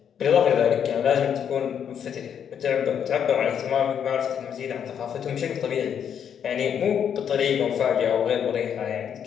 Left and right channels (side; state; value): right; quieter; 8.3 dB